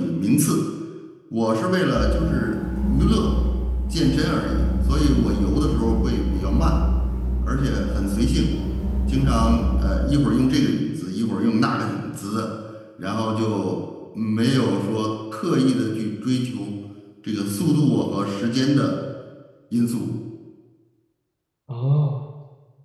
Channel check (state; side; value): identical; both; correlation 1.00